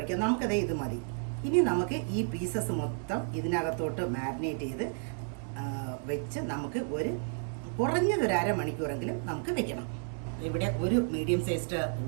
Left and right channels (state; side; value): silent; left; 57 dB below the other